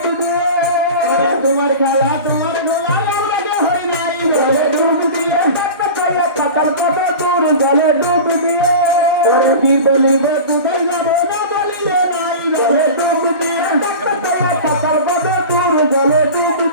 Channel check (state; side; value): inverted; both; correlation -0.33